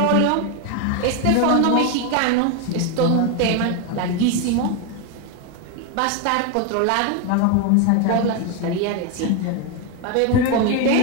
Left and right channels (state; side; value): different; both; correlation 0.01